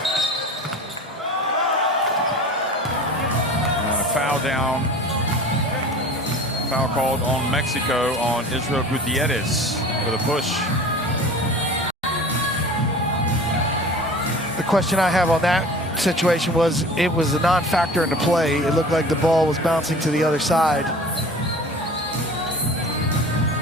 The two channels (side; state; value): both; normal; correlation 0.40